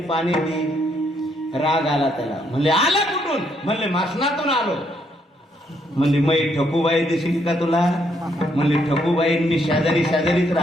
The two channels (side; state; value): both; normal; correlation 0.73